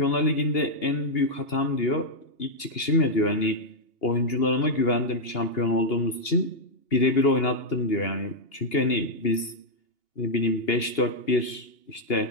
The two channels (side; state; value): right; late; 2.8 ms